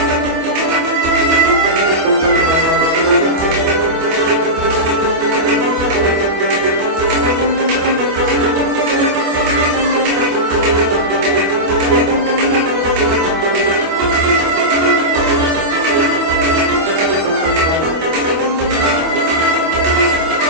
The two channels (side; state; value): left; late; 25 ms